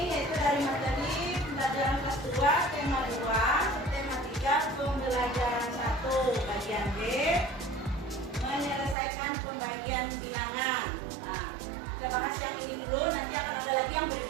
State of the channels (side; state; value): left; drops out; at 9.0 s